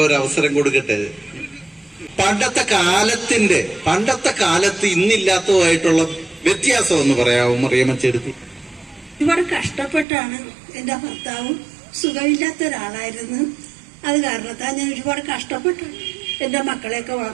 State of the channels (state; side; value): drops out; left; at 10.1 s